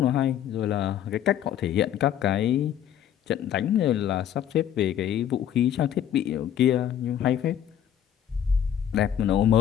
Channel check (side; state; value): right; quieter; 10.0 dB